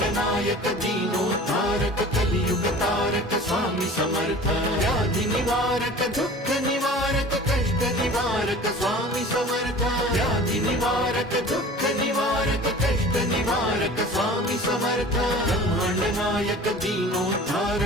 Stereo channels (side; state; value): both; normal; correlation 0.42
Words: नायक दीनोद्धारक कलियुग तारक स्वामी समर्थ। व्याधि निवारक दुःख निवारक कष्ट निवारक स्वामी समर्थ। व्याधि निवारक दुःख निवारक कष्ट निवारक स्वामी समर्थ। ब्रह्मांड नायक